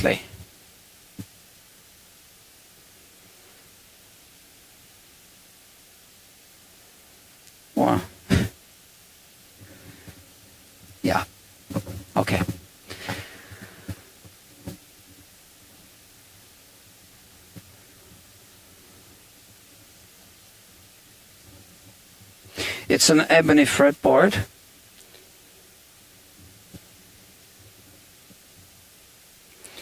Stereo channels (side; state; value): both; identical; correlation 1.00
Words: Well, yeah, okay. It's an ebony fretboard.